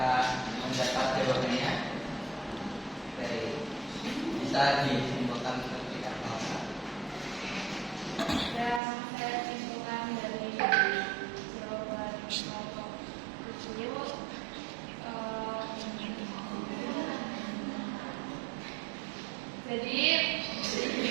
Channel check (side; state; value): left; drops out; at 8.8 s